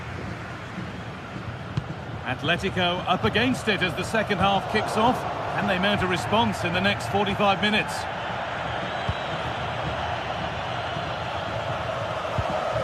Atletico up against it as the second half kicks off, and they mount a response in the next 45 minutes.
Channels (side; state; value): both; identical; correlation 1.00